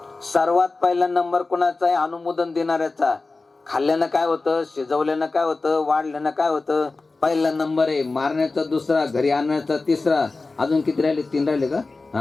सर्वात पहिला नंबर कोणाचा आहे? अनुमोदन देणाऱ्याचा. खाल्ल्यानं काय होतं, शिजवल्यानं काय होतं, वाढल्यानं काय होतं? पहिला नंबर आहे. मारण्याचा दुसरा, घरी आणण्याचा तिसरा. अजून किती राहिले? 3 राहिले का?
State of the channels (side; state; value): right; quieter; 3.6 dB